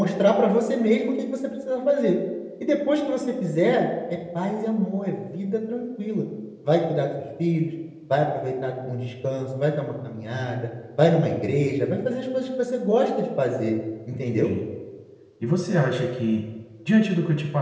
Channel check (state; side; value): identical; both; correlation 1.00